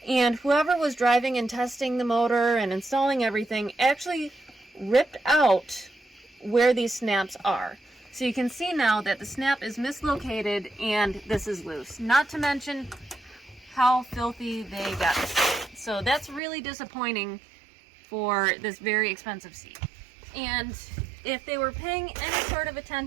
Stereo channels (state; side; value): drops out; left; at 16.4 s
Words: and whoever was driving and testing the motor and installing everything actually ripped out where these snaps are. So you can see now that the snap is mislocated and this is loose. Not to mention how filthy they got it. So that's really disappointing for this very expensive seat. And if they were paying any sort of